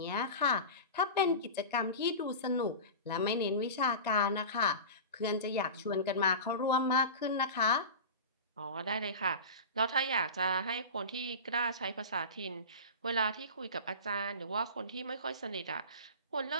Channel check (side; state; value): both; inverted; correlation -0.30